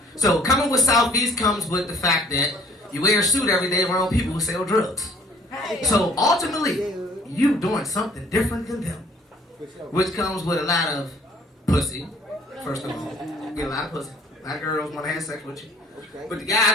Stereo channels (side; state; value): both; normal; correlation 0.56